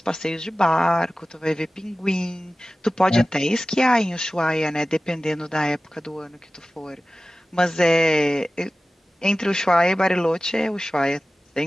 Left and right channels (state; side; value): normal; both; correlation 0.96